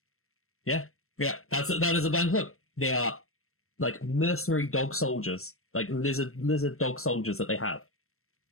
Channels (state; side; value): late; right; 0.62 ms